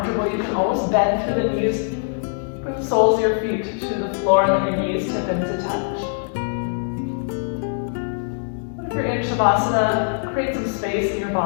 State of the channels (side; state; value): right; silent; digital silence